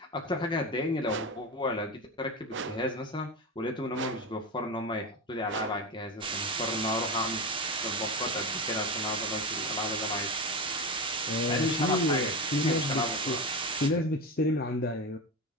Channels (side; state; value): both; normal; correlation 0.20